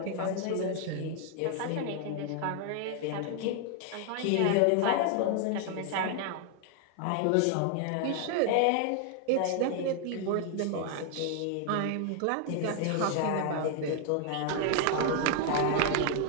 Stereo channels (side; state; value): both; different; correlation 0.00